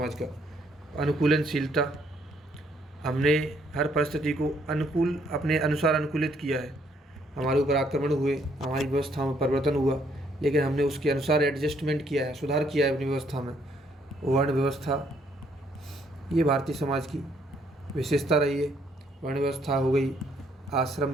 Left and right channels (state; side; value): normal; both; correlation 0.69